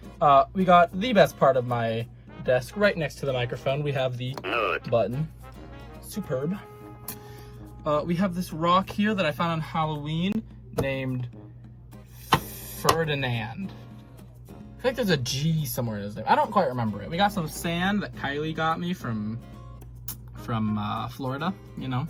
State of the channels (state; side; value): identical; both; correlation 1.00